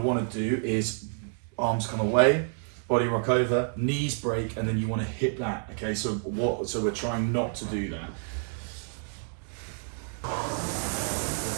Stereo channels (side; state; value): left; silent; 59 dB below the other